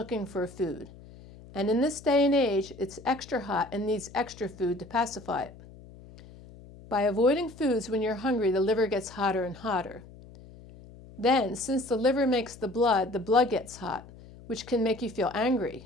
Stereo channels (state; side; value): noise; left; hum, 19 dB below the sound